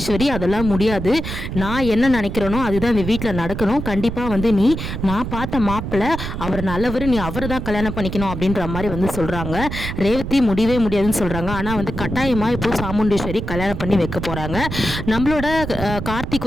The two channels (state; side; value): noise; right; rumble, 6 dB below the sound